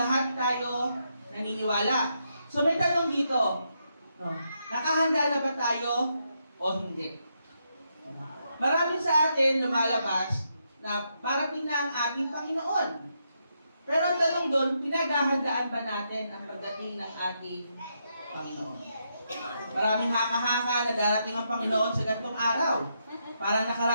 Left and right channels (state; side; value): inverted; both; correlation -0.80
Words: tayo naniniwala. So, may tanong dito. No? Nakahanda na ba tayo o hindi? Marami sa atin lumalabas na parating na ang ating Panginoon. Pero ang tanong doon, pinaghahandaan ba natin ang pagdating ng ating Panginoon? Maraming haka-haka na darating ang Panginoon sa ganitong araw. Parang